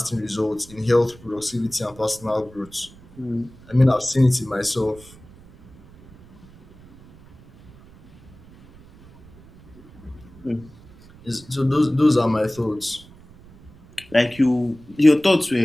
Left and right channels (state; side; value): noise; right; rumble, 23 dB below the sound